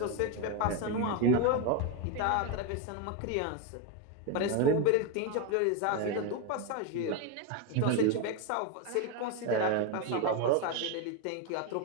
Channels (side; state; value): both; different; correlation 0.02